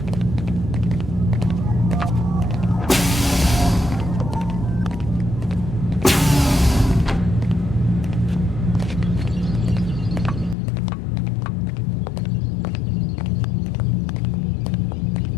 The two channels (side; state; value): right; drops out; at 10.6 s